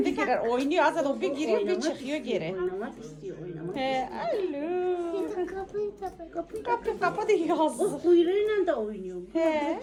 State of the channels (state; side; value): identical; both; correlation 1.00